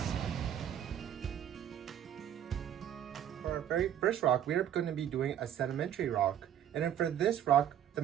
For our very first rock, we are going to be doing a sedimentary rock. And then for this rock, the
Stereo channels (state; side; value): quieter; left; 10.1 dB